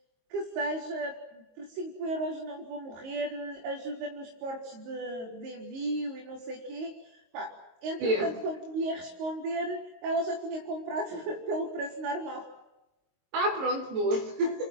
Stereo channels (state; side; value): late; left; 22 ms